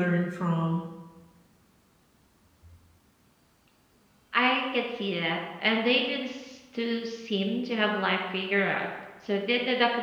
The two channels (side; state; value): both; identical; correlation 1.00